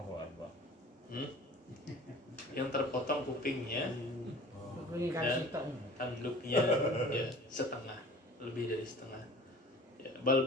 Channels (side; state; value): both; normal; correlation 0.44